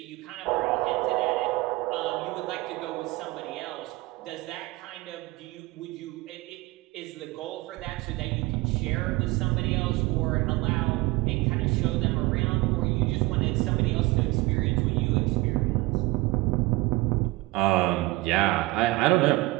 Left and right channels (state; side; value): quieter; left; 21.0 dB